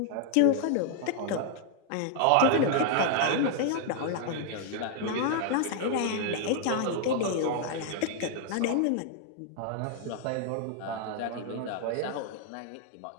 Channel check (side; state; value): both; different; correlation 0.00